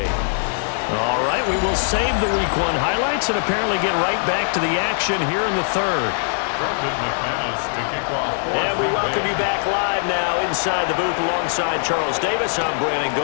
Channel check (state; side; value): silent; right; digital silence